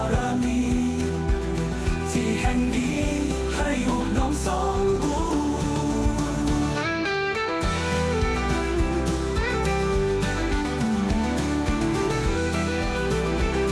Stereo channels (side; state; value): both; identical; correlation 1.00